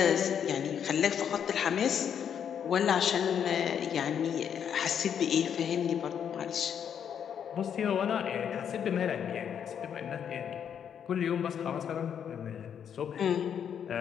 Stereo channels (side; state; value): right; quieter; 8.3 dB